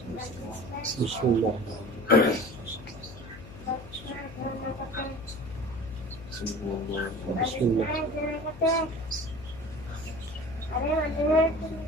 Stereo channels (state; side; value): noise; left; hum, 16 dB below the sound